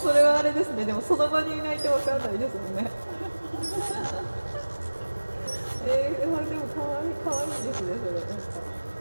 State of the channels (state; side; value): inverted; both; correlation -1.00